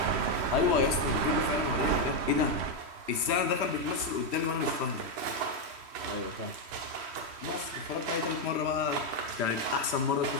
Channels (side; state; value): left; late; 3.1 ms